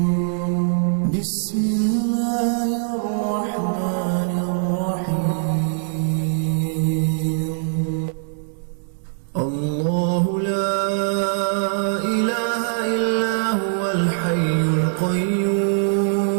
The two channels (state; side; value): silent; left; 64 dB below the other